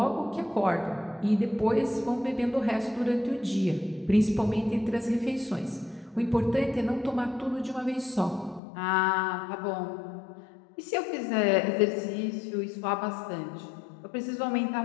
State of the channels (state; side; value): drops out; right; at 8.6 s